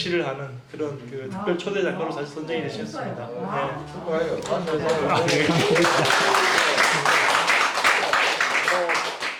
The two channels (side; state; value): both; identical; correlation 1.00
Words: 하는 그런 그 특별 초대 작가로 사실 선정이 되셨습니다. 축하해요.